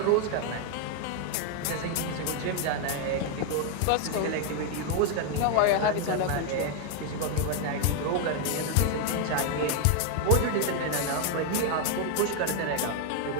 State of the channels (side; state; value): both; different; correlation 0.00